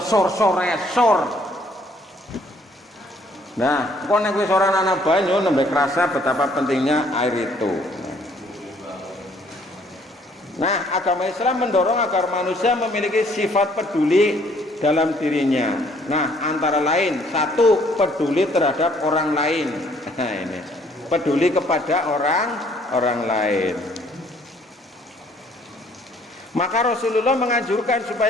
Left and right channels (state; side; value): normal; both; correlation 0.63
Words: Nah, kok nek wis ora ana banyu nembe kerasa betapa pentingnya air itu. Nah, agama Islam mendorong agar manusia memiliki sifat peduli dalam dirinya. Nah, antara lain, satu, peduli terhadap orang lain. Nah, ini peduli kepada orang lain. Maka Rasulullah menganjurkan